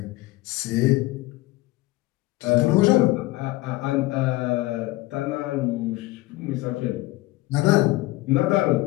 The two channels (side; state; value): right; quieter; 19.3 dB